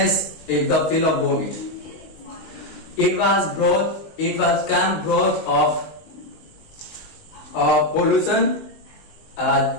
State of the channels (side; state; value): right; late; 19 ms